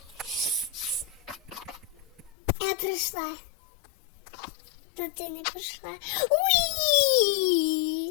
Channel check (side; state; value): right; drops out; at 2.3 s